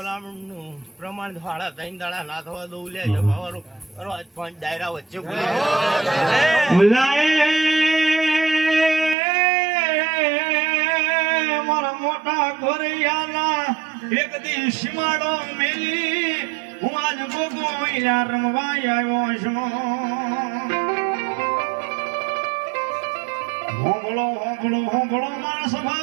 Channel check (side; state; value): left; drops out; at 9.2 s